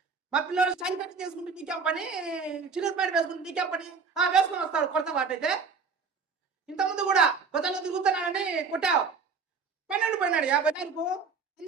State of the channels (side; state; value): left; quieter; 5.3 dB